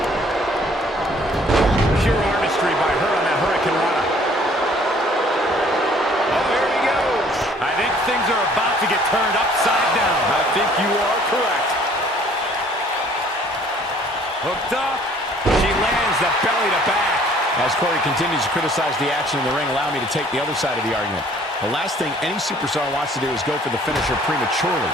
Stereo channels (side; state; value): both; normal; correlation 0.57